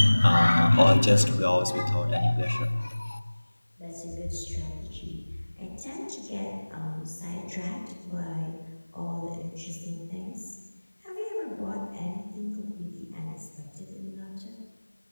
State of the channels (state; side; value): inverted; both; correlation -1.00